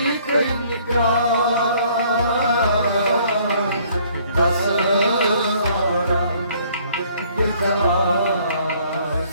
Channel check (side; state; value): both; inverted; correlation -0.60